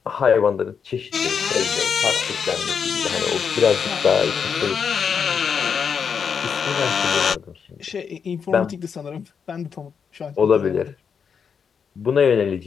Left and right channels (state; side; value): quieter; right; 6.6 dB